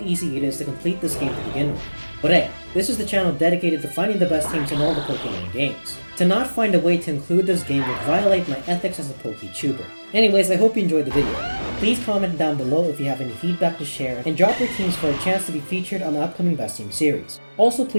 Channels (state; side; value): inverted; both; correlation -1.00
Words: it is to complete this game to begin with. But hey, this is the channel dedicated to finding the best teams in all the Pokemon games. To not find a way to include this game would violate my ethics as a PokeTuber. Anyways, I hope you enjoyed the video. Please comment down below if you have any feedback to share, and drop your teams for a chance to be featured on the upcoming Best Team series. Also,